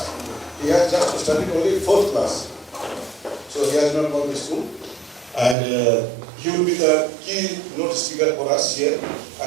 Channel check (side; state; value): left; drops out; at 5.6 s